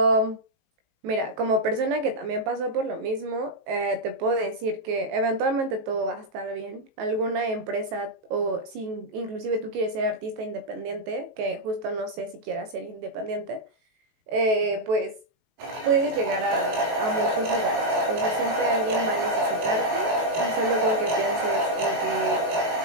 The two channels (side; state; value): left; late; 19 ms